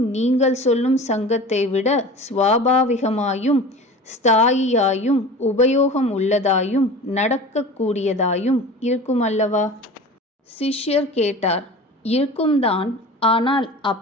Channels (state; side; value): normal; both; correlation 0.37